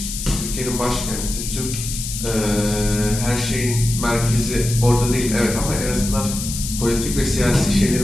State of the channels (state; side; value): noise; left; hiss, 6 dB below the sound